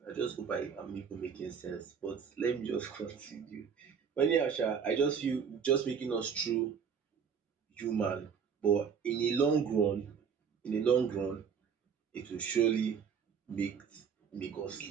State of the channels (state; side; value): quieter; left; 6.8 dB